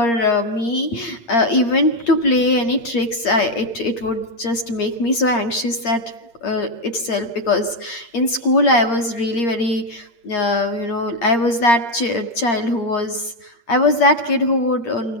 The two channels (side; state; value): right; late; 8.6 ms